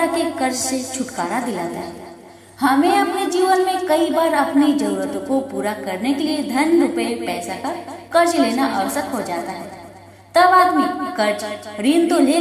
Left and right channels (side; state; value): both; identical; correlation 1.00